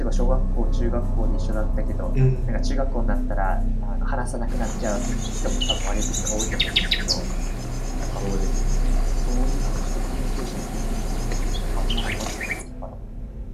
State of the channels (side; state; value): both; identical; correlation 1.00